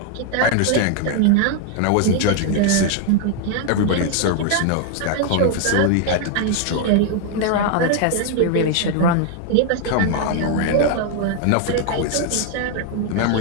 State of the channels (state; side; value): different; both; correlation 0.00